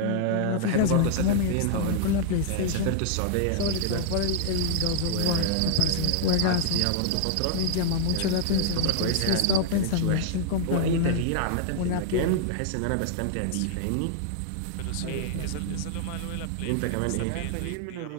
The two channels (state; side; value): different; both; correlation 0.00